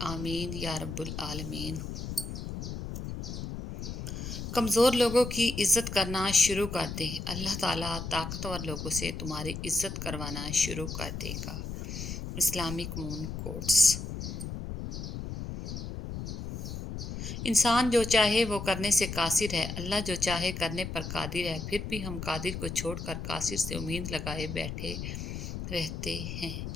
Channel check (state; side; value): noise; left; rumble, 6 dB below the sound